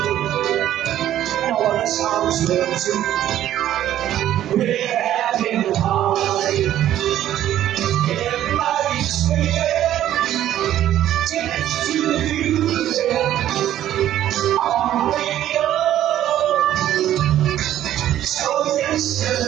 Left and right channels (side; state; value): left; quieter; 12.1 dB